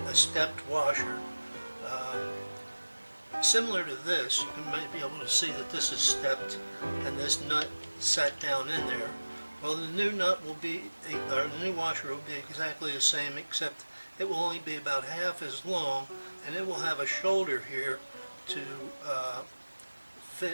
stepped washer. Similar to this, you might be able to see that this is stepped and this nut sat down in there. Well, the new nut will be, or the new washer will be exactly the same, except it will only be about half as long, and it will have a shoulder here to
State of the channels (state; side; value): inverted; both; correlation -1.00